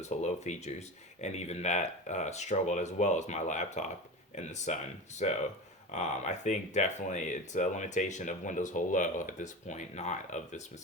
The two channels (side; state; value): both; normal; correlation 0.28